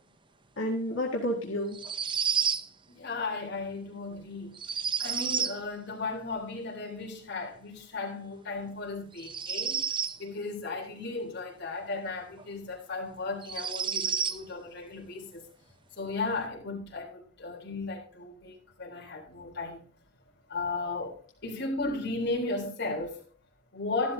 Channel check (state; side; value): normal; both; correlation 0.02